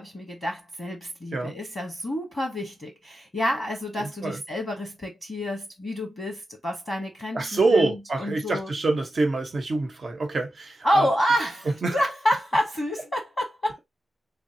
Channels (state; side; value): normal; both; correlation 0.90